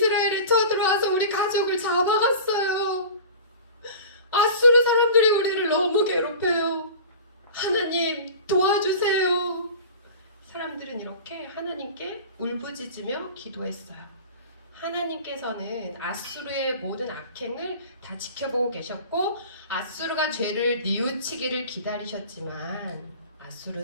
쳐들어와서 우리 가족을 잡아갔어요. 아수르 사람들이 우리를 너무 괴롭혀요. 하나님 도와주세요. 사람들은 이렇게 하나님께 울부짖으며 기도했어요. 하나님께서는 아수르의 모든 악행을 다 지켜보고 계셨고 아수르가 죄를 뉘우치기를 기다리셨지만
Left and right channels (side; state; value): both; inverted; correlation -0.37